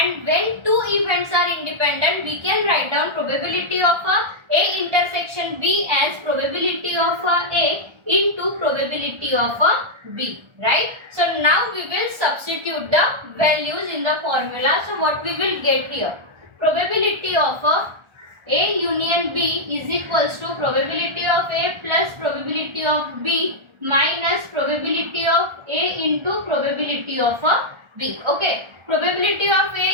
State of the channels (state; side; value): late; left; 1.4 ms